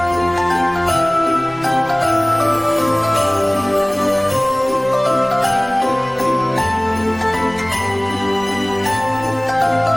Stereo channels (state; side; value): noise; left; rumble, 24 dB below the sound